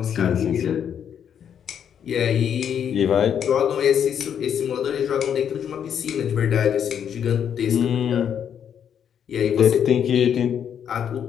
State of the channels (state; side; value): quieter; right; 8.6 dB